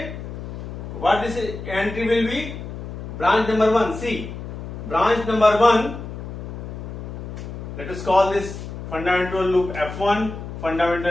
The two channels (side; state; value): left; noise; hum, 9 dB below the sound